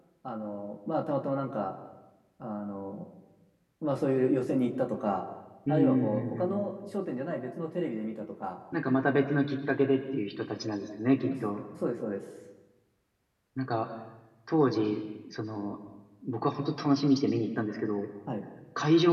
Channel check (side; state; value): both; identical; correlation 1.00